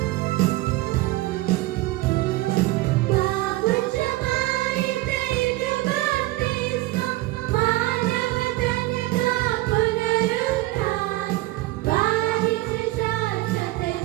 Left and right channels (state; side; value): quieter; left; 18.8 dB